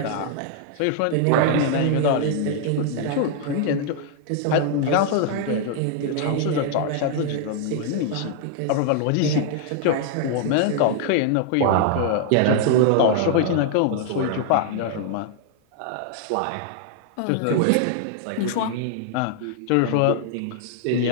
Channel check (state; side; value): different; both; correlation 0.00